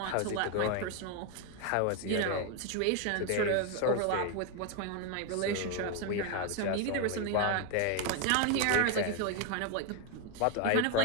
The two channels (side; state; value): both; different; correlation 0.01